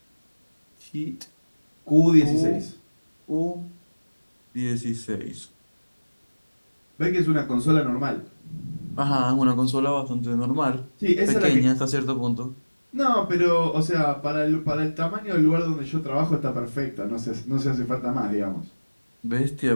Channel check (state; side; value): inverted; both; correlation -1.00